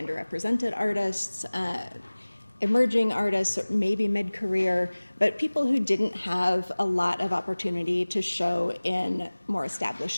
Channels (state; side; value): inverted; both; correlation -1.00